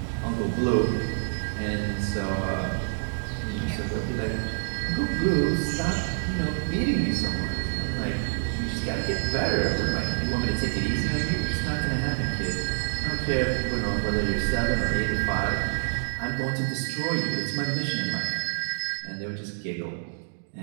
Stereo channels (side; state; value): left; silent; digital silence